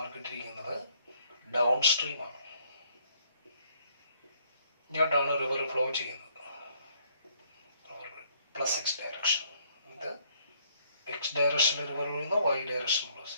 ഇട്ടിരിക്കുന്നത് ഡൗൺ സ്ട്രീം ആണ്. ഇങ്ങോട്ടാണ് റിവർ ഫ്ലോ ചെയ്യുന്നത്, പ്ലസ് എക്സ് ഡയറക്ഷൻ. ഇത് എക്സ് ഡയറക്ഷനിൽ റിവർ ഒഴുകുന്നു, വൈ ഡയറക്ഷൻ ഫ്ലോ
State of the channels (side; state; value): both; inverted; correlation -0.64